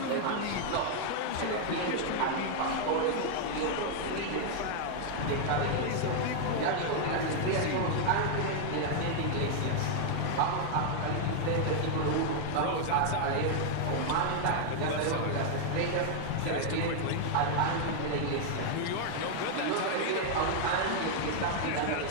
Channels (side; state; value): both; different; correlation 0.00